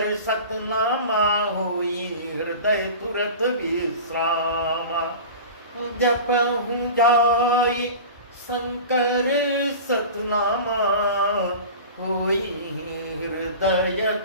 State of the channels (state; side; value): inverted; both; correlation -0.35